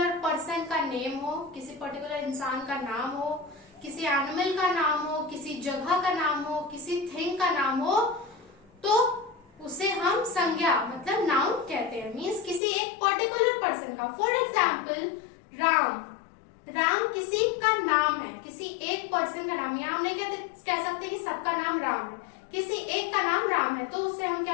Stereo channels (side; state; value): right; drops out; at 12.6 s